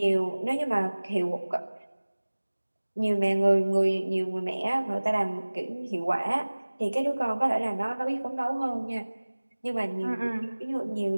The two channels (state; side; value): inverted; both; correlation -1.00